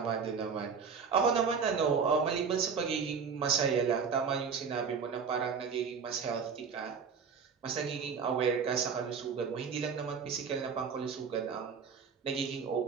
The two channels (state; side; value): quieter; left; 6.0 dB